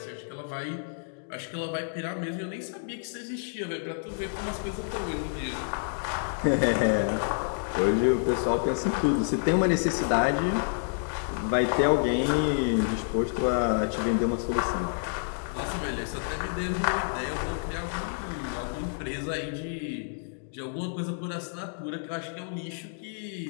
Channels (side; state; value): right; silent; digital silence